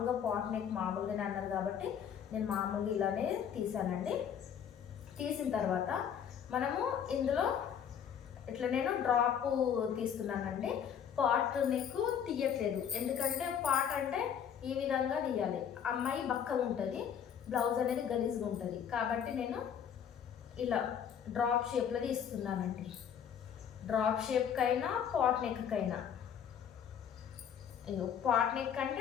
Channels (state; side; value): quieter; right; 8.3 dB